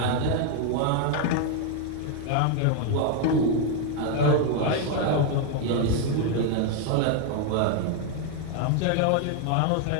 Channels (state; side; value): different; both; correlation 0.00